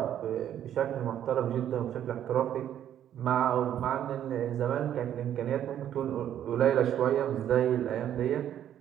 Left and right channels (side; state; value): left; quieter; 10.6 dB